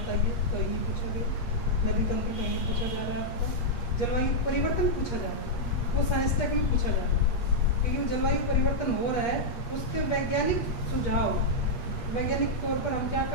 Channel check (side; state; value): right; late; 8.4 ms